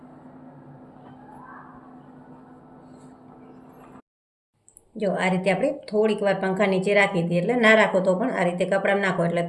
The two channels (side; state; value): both; identical; correlation 1.00